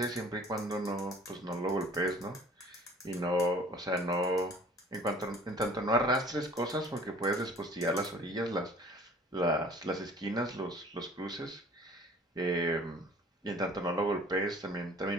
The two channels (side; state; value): both; normal; correlation 0.50